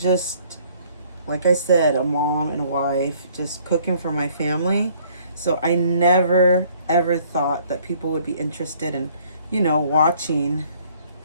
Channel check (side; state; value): both; inverted; correlation -0.60